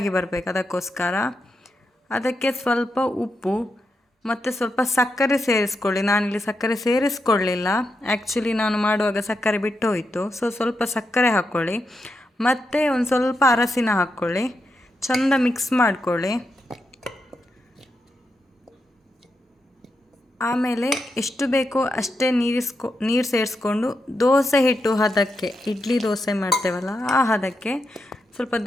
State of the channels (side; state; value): both; normal; correlation 0.85